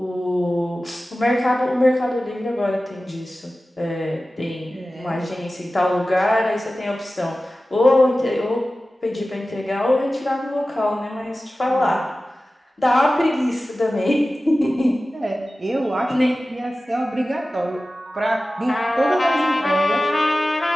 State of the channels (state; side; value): normal; both; correlation 0.96